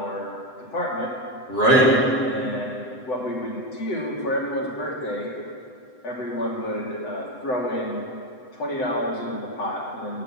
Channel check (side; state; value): right; late; 7.9 ms